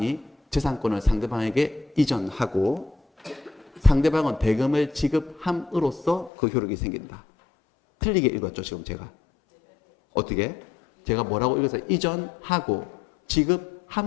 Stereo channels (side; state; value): right; drops out; at 6.3 s